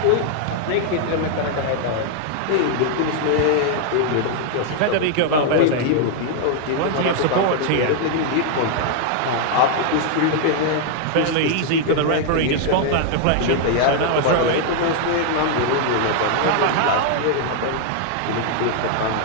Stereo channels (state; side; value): different; both; correlation 0.00